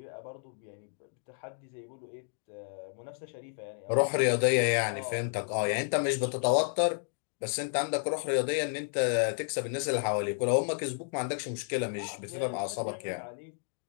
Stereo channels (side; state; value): right; silent; digital silence